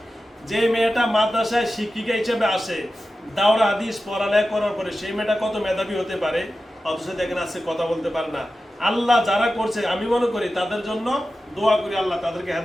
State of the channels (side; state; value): both; normal; correlation 0.93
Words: যে মেয়েটা মাদ্রাসায় শিক্ষিকা হিসেবে আসে, দাওরা হাদিস পড়ালেখা করার পরে সেই মেয়েটা কত মেধাবী হতে পারে, অথচ দেখেন আজকে কথা বলতে পারে না। আল্লাহ যারা করছে আমি মনে করি তাদের জন্য দোয়া করি আল্লাহ তাদেরকে